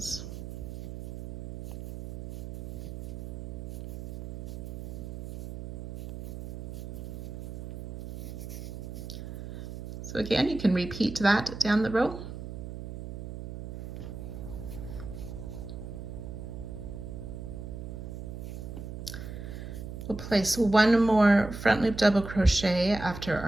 So again, you can repeat that down the row. We'll place 1 more front loop double crochet after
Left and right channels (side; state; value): right; noise; hum, 9 dB below the sound